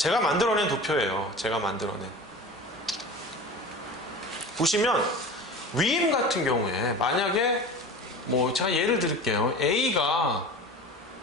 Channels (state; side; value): normal; both; correlation 0.35